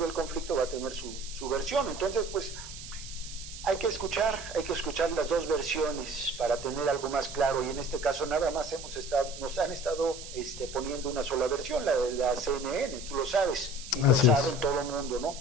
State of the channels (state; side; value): noise; right; hiss, 12 dB below the sound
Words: el conflicto va a tener su versión. Entonces, pues, hay que escuchar las dos versiones para tener algo más claro, y en este caso nada más nos han estado poniendo una sola versión, la de la CNN, tú lo sabes, y lo saben todo el mundo,